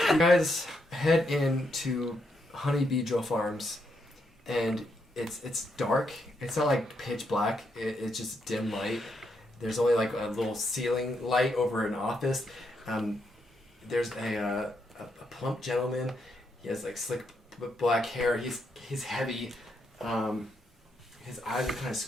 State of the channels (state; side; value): normal; both; correlation 0.79